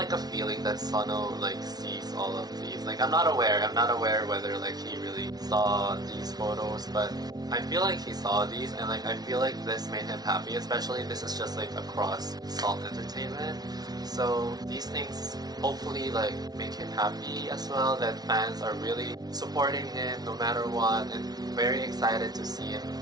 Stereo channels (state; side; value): late; left; 0.19 ms